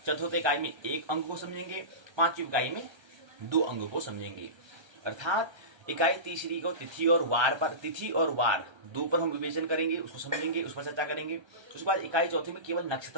चतुर्थ इकाई में 1 अंग को समझेंगे, 5वीं इकाई में 2 अंगों को समझेंगे। अर्थात इकाई तीसरी को तिथि और वार पर, तिथि और वार 2 पर हम विवेचन करेंगे, उसको समझेंगे, उस पर चर्चा करेंगे। उसके बाद इकाई चौथी में केवल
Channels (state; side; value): late; left; 1.3 ms